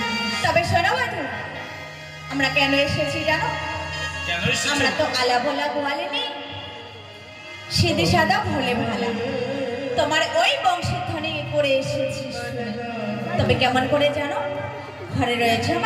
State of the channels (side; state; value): both; identical; correlation 1.00